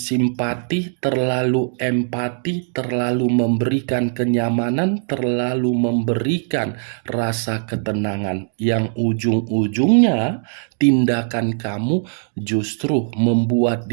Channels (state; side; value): silent; left; digital silence